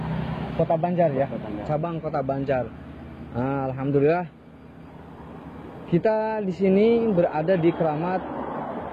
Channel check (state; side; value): identical; both; correlation 1.00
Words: Kota Banjar ya, cabang Kota Banjar. Nah, alhamdulillah kita di sini berada di keramat